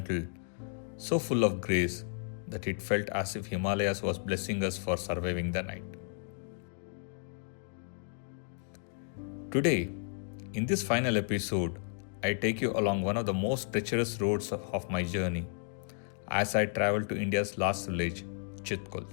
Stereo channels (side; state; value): right; silent; digital silence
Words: so full of grace, that it felt as if Himalayas was blessing us for surviving the night. Today, in this final episode, I take you along one of the most treacherous roads of my journey as I travel to India's last village, Chitkul.